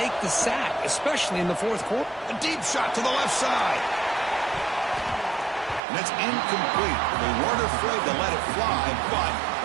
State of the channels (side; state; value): left; drops out; at 5.8 s